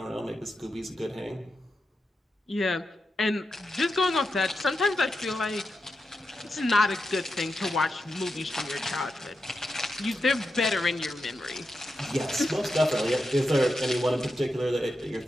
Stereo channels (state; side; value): normal; both; correlation 0.88